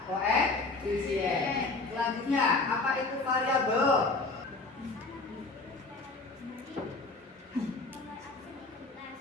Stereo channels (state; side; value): quieter; right; 3.5 dB